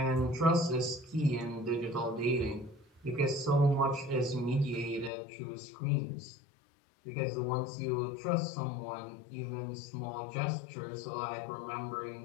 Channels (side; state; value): right; drops out; at 5.1 s